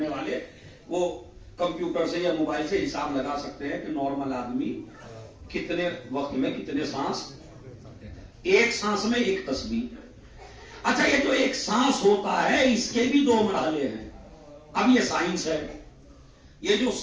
والے، وہ کمپیوٹر سے یا موبائل سے حساب لگا سکتے ہیں کہ نارمل آدمی کتنے وقت میں کتنے سانس، ایک سانس میں ایک تسبیح. اچھا یہ جو ایک سانس ہوتا ہے اس کے بھی 2 مرحلے ہیں. اب یہ سائنس ہے. یہ جو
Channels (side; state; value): both; identical; correlation 1.00